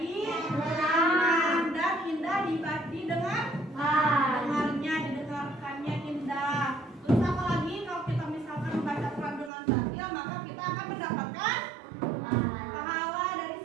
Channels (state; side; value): drops out; left; at 9.5 s